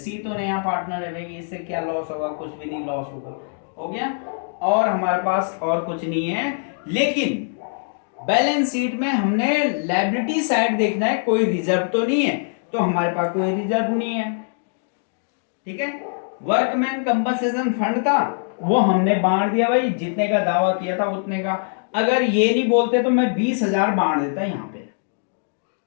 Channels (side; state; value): right; silent; digital silence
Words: तो नया पार्टनर है भाई, इससे क्या लॉस होगा, कुछ भी नहीं लॉस होगा, हो गया। और हमारे पास और कुछ नहीं है, लेकिन बैलेंस शीट में हमने लायबिलिटी साइड देखना है, कोई रिजर्व तो नहीं है, तो हमारे पास कोई रिजर्व नहीं है। ठीक है, वर्कमैन कंपनसेशन फंड था, वो हमने बांट दिया भाई, जितने का दावा किया था उतने का। अगर ये नहीं बोलते तो मैं 20,000 बांट देता यहाँ पे,